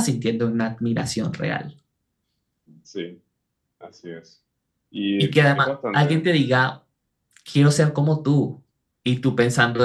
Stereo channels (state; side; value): identical; both; correlation 1.00